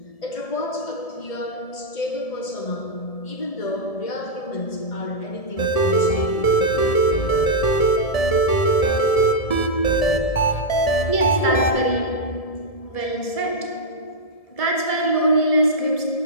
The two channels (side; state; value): right; late; 1.7 ms